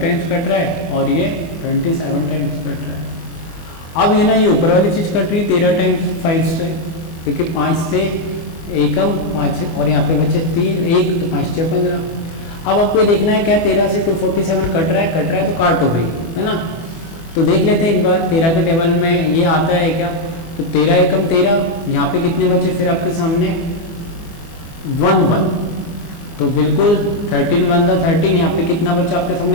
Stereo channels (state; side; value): late; right; 24 ms